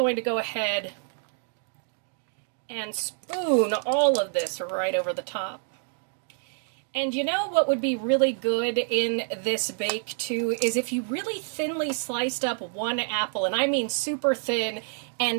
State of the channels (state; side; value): silent; left; 58 dB below the other